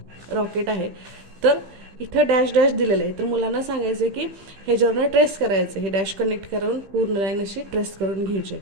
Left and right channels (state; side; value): late; left; 15 ms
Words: रॉकेट आहे, तर इथं डॅश डॅश दिलेलं आहे. तर मुलांना सांगायचं की ह्याच्यावरनं ट्रेस करायचं. हे डॅश कनेक्ट करून पूर्ण लाईन अशी ट्रेस करून घ्यायची.